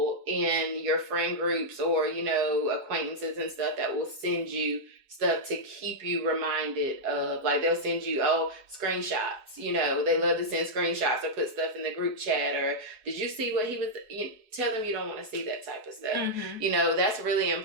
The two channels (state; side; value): late; left; 4.7 ms